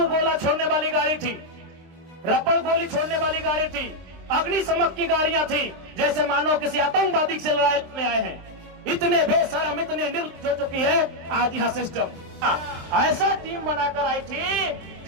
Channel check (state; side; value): late; left; 23 ms